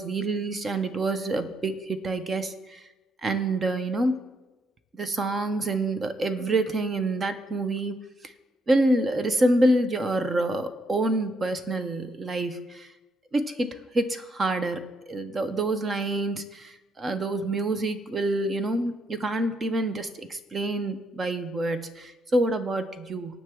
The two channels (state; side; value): normal; both; correlation 0.75